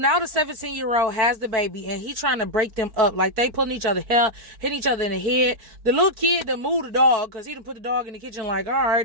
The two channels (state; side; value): late; left; 4.6 ms